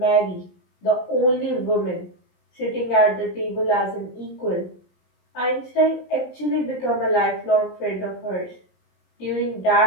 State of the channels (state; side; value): late; right; 17 ms